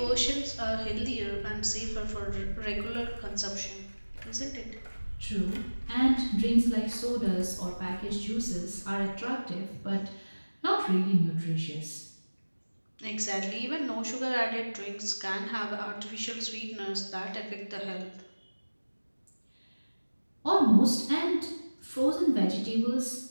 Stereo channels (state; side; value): inverted; both; correlation -1.00